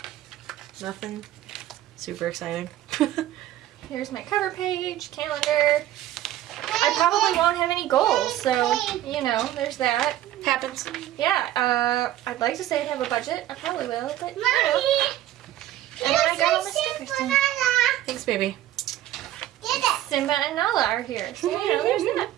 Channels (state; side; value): quieter; left; 13.5 dB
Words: Nothing super exciting. Here's my cover page, calendar. I probably won't have any goals, so, you know, there's that. Happens. Yeah, I'd like to say I'd have a budget. I probably will, but, you know. And then I got all my stickers done. Thanks, baby. Simba and Nala are here, so, you know, there's that.